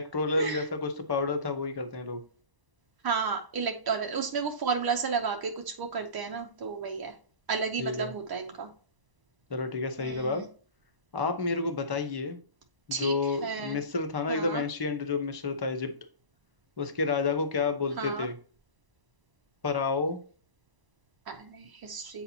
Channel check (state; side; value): late; left; 1.0 ms